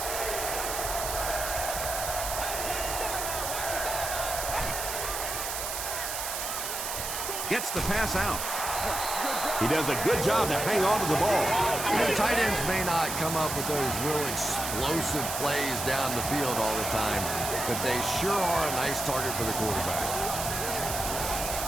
Gets the pass out. He does a good job to hang on to the ball. You know, tight ends may not come up with those real explosive plays down the field all the time, but they sure are a nice target for the quarterback.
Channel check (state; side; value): noise; right; hiss, 4 dB below the sound